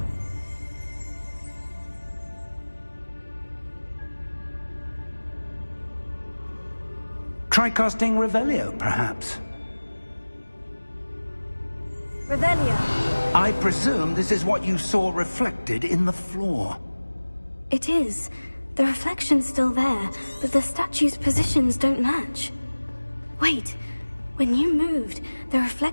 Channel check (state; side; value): inverted; both; correlation -1.00